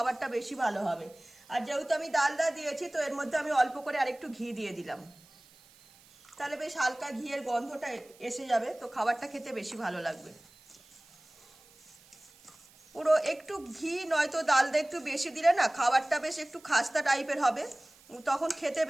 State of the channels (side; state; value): right; noise; hiss, 26 dB below the sound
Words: বেশি ভালো হবে। আর যেহেতু আমি ডালদা দিয়েছি, তো এর মধ্যে আমি অল্প করে আরেকটু ঘি দিয়ে দিলাম। তাহলে বেশ হালকা ঘিয়ের গন্ধটা এসে যাবে। তো খাবারটা খেতে বেশি ভালো লাগবে। পুরো একটু ঘি নয়তো ডালদা একটু বেশি দিলে না খাবারটা বেশ একটু খাস্তা টাইপের হবে, তখন খেতে